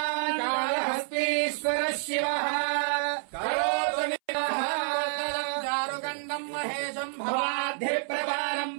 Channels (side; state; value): left; silent; 59 dB below the other